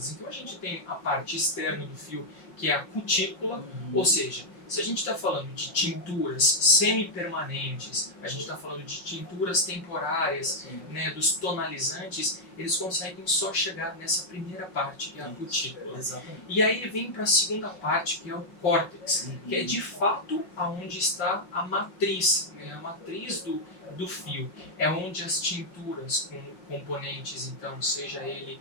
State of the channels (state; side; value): late; right; 5.6 ms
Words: Então a gente tem a parte externa do fio, que é a cutícula, ou seja, se a gente está falando de tinturas semi-permanentes, a gente está falando de tinturas temporárias, né, dos tonalizantes, eles conseguem só chegar nessa primeira parte, que é a cutícula. Exatamente. E aí vem para a segunda parte, que é o córtex, que é de fato aonde está a matriz, né, a matriz do fio. É onde as tinturas com componentes, então, seja ele